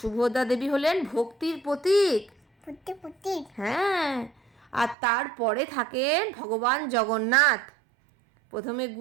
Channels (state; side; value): drops out; left; at 5.0 s